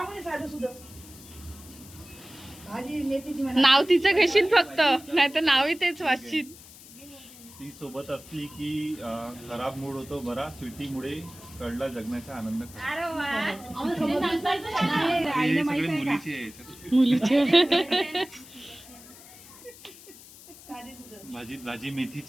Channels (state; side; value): noise; left; hiss, 19 dB below the sound